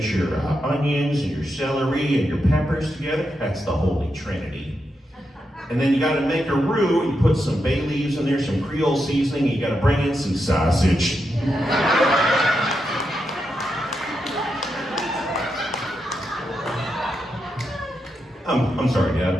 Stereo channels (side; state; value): both; normal; correlation 0.85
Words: your onions and your celery and your peppers together. That's the Holy Trinity. And then you gotta make a roux, and you put some bay leaves in there, some Creole seasoning, and you gotta bring in some sausage. I'm sorry, Dad,